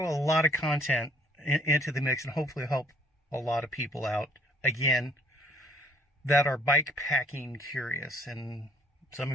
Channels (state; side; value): normal; both; correlation 0.59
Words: a lot of content into the mix and hopefully help a lot of people out, again, that are bike packing curious. And some